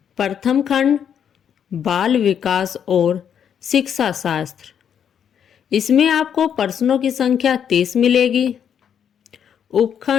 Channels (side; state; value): right; quieter; 8.4 dB